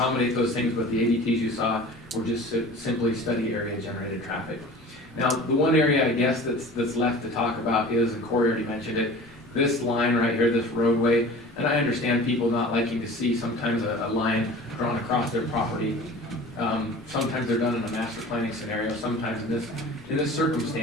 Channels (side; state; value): both; normal; correlation 0.40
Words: those things, but the ADTs you saw were just simply study area generated traffic. Now, the one area I guess that's left to talk about is, and Corey already mentioned it, this line right here, this roadway, and I understand people not liking to see sometimes a line drawn across their property. Sometimes they're done in a master planning scenario, sometimes in this